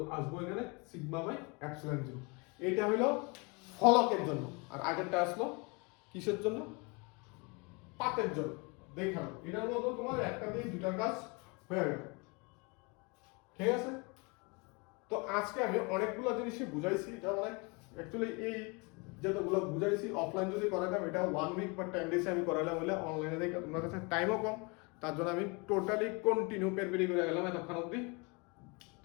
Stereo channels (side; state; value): right; quieter; 29.9 dB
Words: আসবো এখানে সিগমা বাই এপসিলন 0। এটা হলো ফলকের জন্য, আর আগেরটা আসলো কিসের জন্য, পাতের জন্য। দেখালো এটার মতো তোমার একটা দিয়ে দুটা কাজ হয়ে গেল, ঠিক আছে। তো আজকে আমি অনেকগুলো জিনিসই বুঝাইছি, এটা অনেক অ্যাকচুয়ালি এই যতগুলো বুঝাইছি অফলাইন যদি করাইতাম এটা 1 উইক বা 10 ডেজে আমি করাইলাম, হলে অনলাইনে দেখে তোমার কাছে টাইমও কম, তার জন্য আমি টোটালি কন্টিনিউ পেরপেরি করে গেলাম এতক্ষণ অবধি।